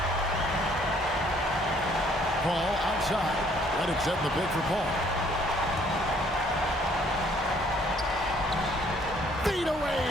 Paul outside. Reddick setting the pick for Paul. Feet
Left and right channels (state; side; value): normal; both; correlation 0.62